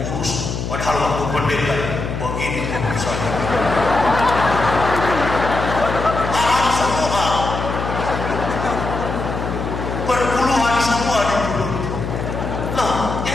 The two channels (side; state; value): left; noise; hum, 4 dB below the sound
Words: kurus. Padahal waktu pendeta begini kurusannya. Haram semua, perpuluhan semua di mulut. Loh,